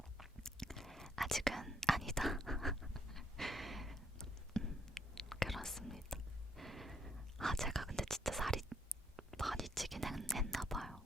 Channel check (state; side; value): normal; both; correlation 0.71